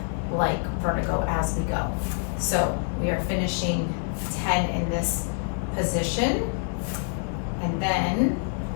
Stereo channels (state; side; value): silent; right; 61 dB below the other